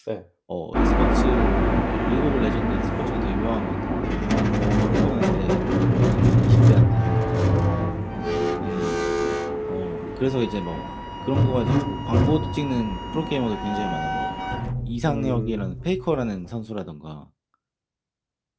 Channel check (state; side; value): identical; both; correlation 1.00